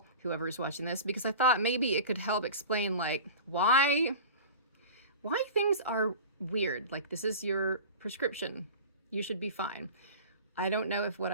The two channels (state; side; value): inverted; both; correlation -0.36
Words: whoever's watching this, because I thought maybe it could help explain like why things are weird. Like, this is your prescription. You should be fine. I don't know if what